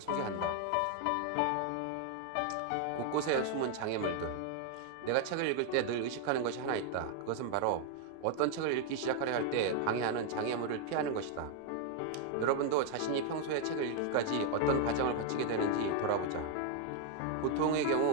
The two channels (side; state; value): both; different; correlation 0.00